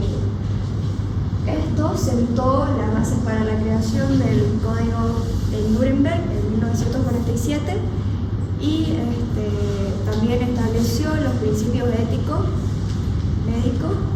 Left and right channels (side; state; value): both; identical; correlation 1.00